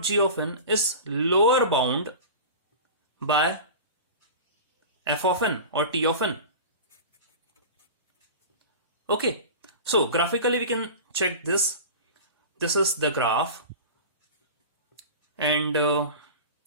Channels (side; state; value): both; inverted; correlation -0.33